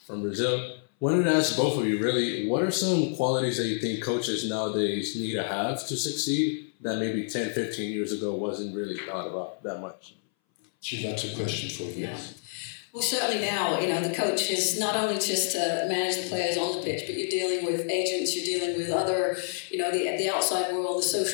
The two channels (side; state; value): right; silent; 59 dB below the other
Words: from Brazil. Wanted to ask both of you, really, what are some qualities that you think coaches nowadays need to have to succeed that maybe 10, 15 years ago wasn't really thought about that much? Gee, that's a question for you. Yeah. Well, certainly now, the coach is not only just to manage the players on the pitch, but you're dealing with agents, you're dealing with other, the outside world, the